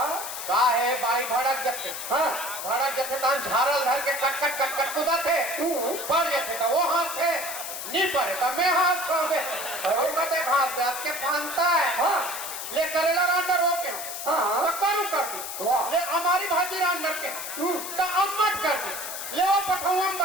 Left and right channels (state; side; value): noise; left; hiss, 7 dB below the sound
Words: का है भाई भड़क जते। हाँ भड़क जते तान झारल धर के कट कुदा थे। पड़ जाते तो वो हाथ थे, नहीं पड़े तो मैं हाथ खा दे। और कहते हाथ दे के फानता है। हाँ ले करेला रांडर हो के हाँ तो करू कर दी। वाह ले हमारी भाजी रांडर के तो अम्मट कर दी। ले वो पठाऊं